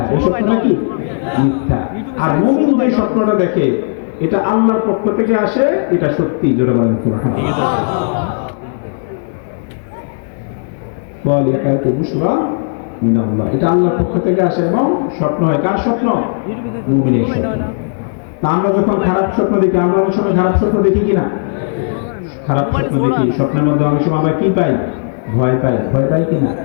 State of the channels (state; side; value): silent; right; digital silence